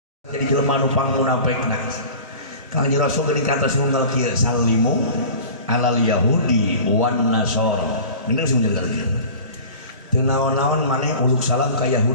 jadi jelema nu pangmunafekna. Kanjeng Rasul geuning kantos ngunggal kieu salimu alal yahudi wan nasara. Bener sih bener kieu. Teu naon-naon maneh uluk salam ka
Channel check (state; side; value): inverted; both; correlation -0.39